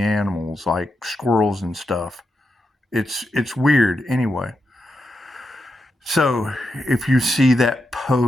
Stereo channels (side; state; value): both; normal; correlation 0.85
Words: like squirrels and stuff. It's weird. Anyway, so if you see that